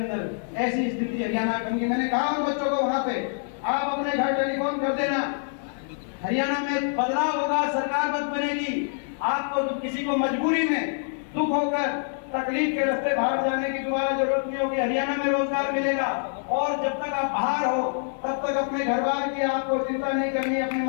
ऐसी स्थिति हरियाणा में। मैंने कहा उन बच्चों को वहां पे आप अपने घर टेलीफोन कर देना, हरियाणा में बदलाव होगा, सरकार बद बनेगी। आपको तो किसी को मजबूरी में दुख होकर तकलीफ के रास्ते बाहर जाने की दोबारा जरूरत नहीं होगी, हरियाणा में रोजगार मिलेगा। और जब तक आप बाहर हो तब तक अपने घर बार की आपको चिंता नहीं करनी। अपने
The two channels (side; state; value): right; silent; 61 dB below the other